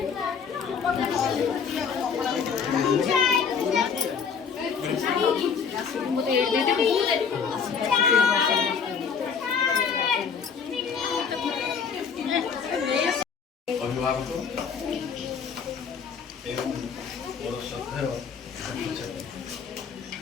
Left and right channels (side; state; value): right; quieter; 6.3 dB